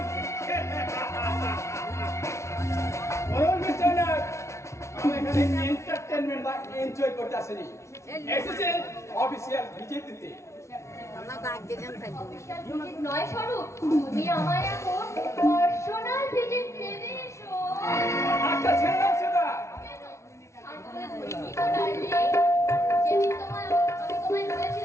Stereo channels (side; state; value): right; late; 0.13 ms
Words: আমি এখানে এন্টারটেনমেন্ট বা এনজয় করতে আসিনি, এসেছে অফিসিয়াল ভিজিট দিতে। নয় স্বরূপ, তুমি আমায় এখন পার্সোনাল ভিজিট দেবে। এসো একটা ছেড়ে দাও সেটা। যেদিন আমি তোমায়